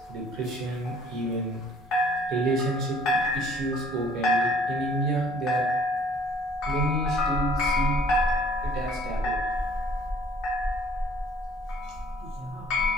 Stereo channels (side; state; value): both; normal; correlation 0.57